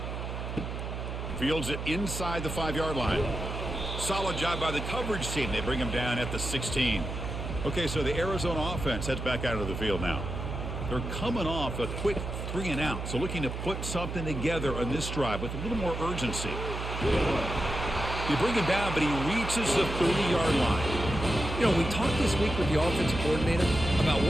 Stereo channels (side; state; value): right; noise; hum, 5 dB below the sound